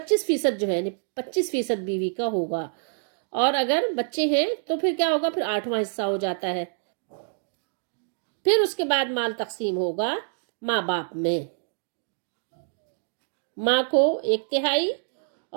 جو ہے یعنی 25% بیوی کا ہوگا، اور اگر بچے ہیں تو پھر کیا ہوگا، پھر 8واں حصہ ہو جاتا ہے۔ پھر اس کے بعد مال تقسیم ہوگا ماں باپ میں، ماں کو 1/3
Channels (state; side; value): silent; left; digital silence